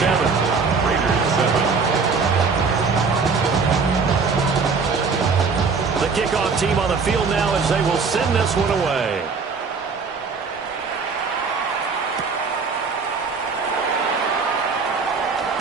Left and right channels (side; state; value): left; quieter; 4.9 dB